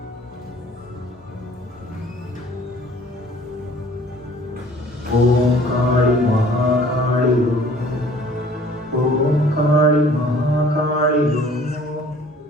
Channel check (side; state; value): both; normal; correlation 0.53